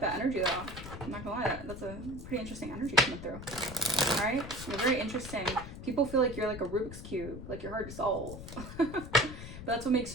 that energy though. I'm not gonna lie, that's a pretty interesting energy coming through. All right, you're very interesting. People feel like you're like a Rubik's Cube, like you're hard to solve. But that's what makes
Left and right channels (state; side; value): noise; left; rumble, 11 dB below the sound